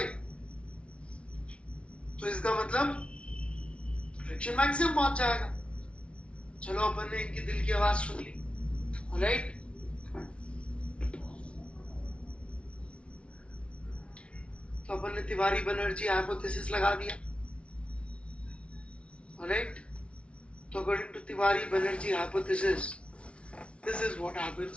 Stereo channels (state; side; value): late; right; 0.060 ms